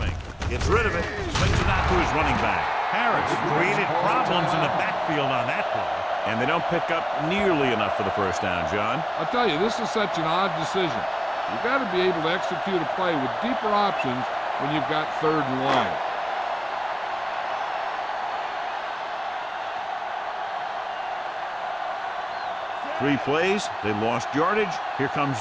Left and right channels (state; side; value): identical; both; correlation 1.00